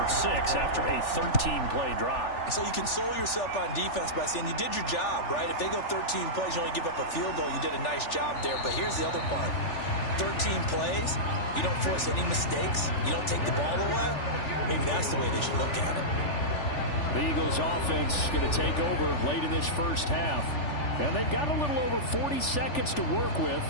6 after a 13-play drive. So you console yourself on defense by saying you did your job, right? If they go 13 plays, you only give up a field goal, you did a nice job there. But here's the other part. 13 plays, you don't force any mistakes, you don't take the ball away. Maybe that's the way they should look at it. The Eagles offense going to take over late in this first half. And they've got a little over 40 seconds to work with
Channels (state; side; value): late; right; 3.4 ms